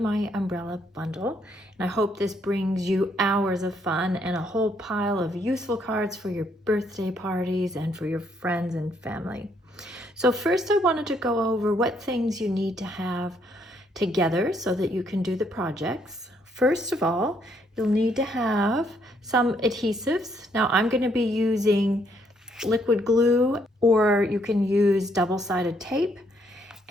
Umbrella bundle. And I hope this brings you hours of fun and a whole pile of useful cards for your birthday parties and for your friends and family. So first I wanted to go over what things you need to have together so that you can do the projects. First of all, you'll need to have some adhesives. Now I'm going to be using liquid glue, or you can use double-sided tape,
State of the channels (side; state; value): both; normal; correlation 0.71